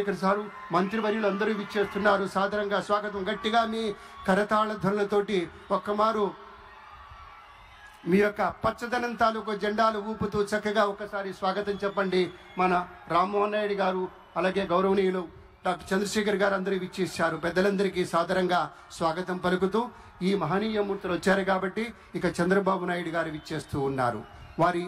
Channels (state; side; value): identical; both; correlation 1.00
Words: సారు, మంత్రివర్యులు అందరూ విచ్చేస్తున్నారు. సాదరంగా స్వాగతం. గట్టిగా మీ కరతాళ ధ్వనులతోటి ఒక్కమారు మీ యొక్క పచ్చదనం తాలూకు జెండాలు ఊపుతూ చక్కగా ఒకసారి స్వాగతం చెప్పండి. మన రామ్మోహన్ నాయుడు గారు, అలాగే గౌరవనీయులు డాక్టర్ చంద్రశేఖర్ గారు అందరూ విచ్చేశారు. పెద్దలందరికీ సాదరంగా స్వాగతం పలుకుతూ ఈ మహనీయ మూర్తులు వచ్చారు కాబట్టి ఇక చంద్రబాబు నాయుడు గారు విచ్చేస్తూ ఉన్నారు. వారి